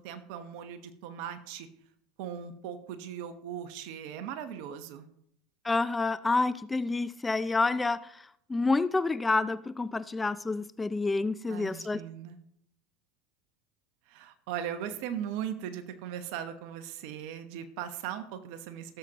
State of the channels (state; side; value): normal; both; correlation 0.81